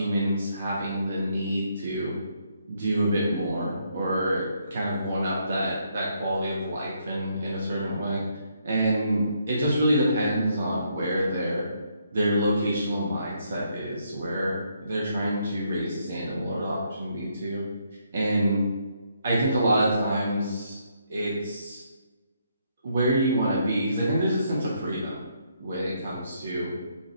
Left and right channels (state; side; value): inverted; both; correlation -0.74